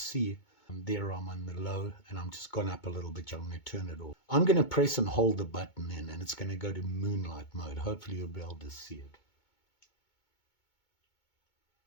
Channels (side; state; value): right; late; 2.2 ms